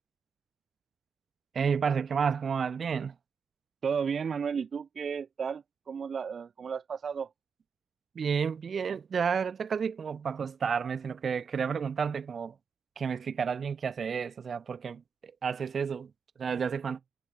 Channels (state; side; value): quieter; left; 6.2 dB